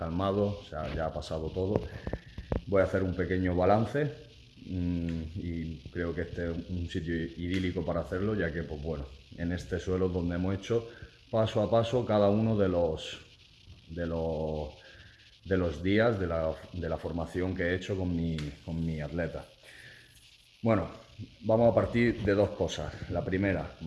o sea, ya ha pasado todo. Voy a hacer un pequeño balance y creo que este es un sitio idílico para hacerlo, ya que, pues bueno, en este suelo es donde hemos hecho paso a paso cada uno de los días de la formación que he hecho con mi atleta. Bueno, vamos a partir de dos cosas. La primera,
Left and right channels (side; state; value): both; identical; correlation 1.00